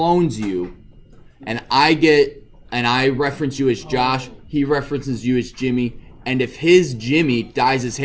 you, and I reference you as Josh, he references you as Jimmy, and if his Jimmy dyes his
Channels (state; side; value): identical; both; correlation 1.00